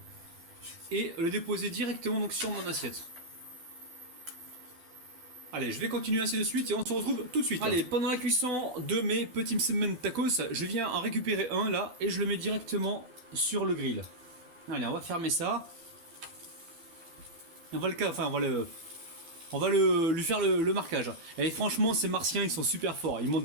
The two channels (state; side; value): late; left; 12 ms